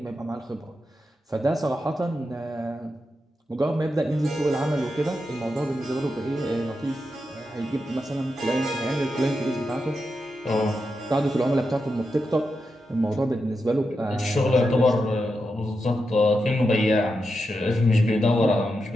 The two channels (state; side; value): normal; both; correlation 0.87